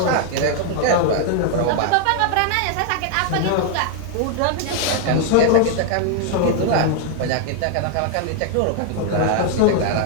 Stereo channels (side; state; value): both; different; correlation 0.00